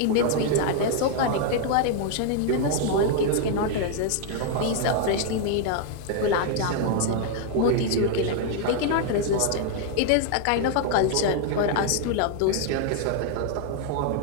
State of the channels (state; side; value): different; both; correlation 0.00